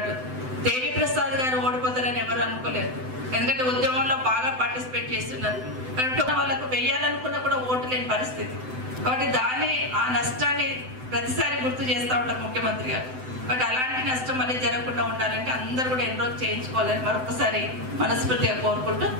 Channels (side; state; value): left; late; 7.9 ms